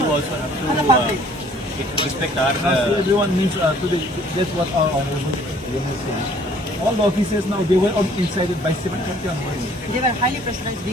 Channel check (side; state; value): both; normal; correlation 0.57